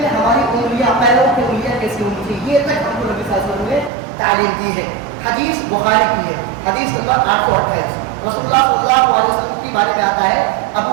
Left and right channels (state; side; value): drops out; left; at 3.9 s